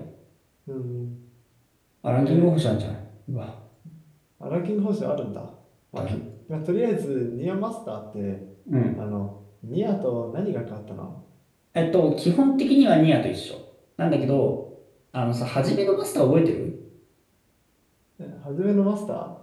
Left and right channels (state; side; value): identical; both; correlation 1.00